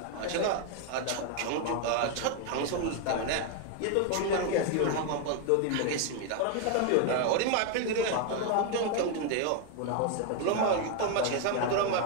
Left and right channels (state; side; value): different; both; correlation 0.01